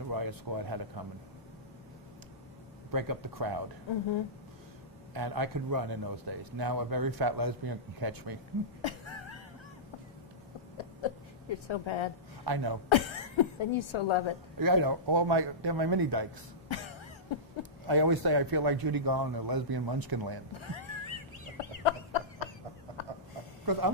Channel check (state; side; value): normal; both; correlation -0.17